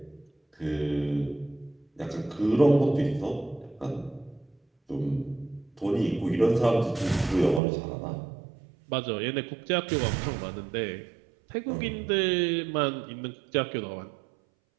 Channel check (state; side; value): drops out; left; at 7.6 s